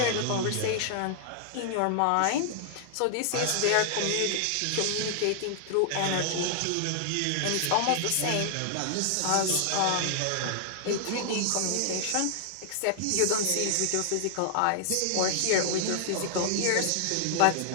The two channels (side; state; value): both; different; correlation 0.00